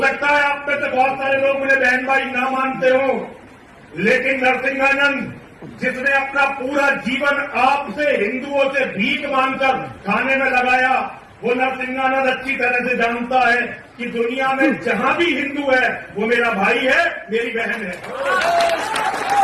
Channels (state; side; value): identical; both; correlation 1.00